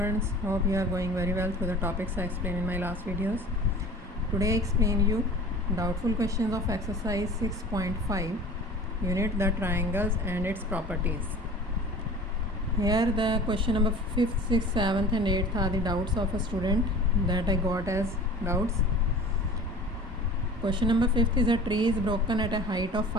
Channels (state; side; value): normal; both; correlation 0.42